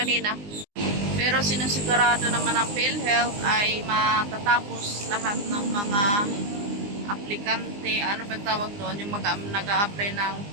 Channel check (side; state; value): left; late; 20 ms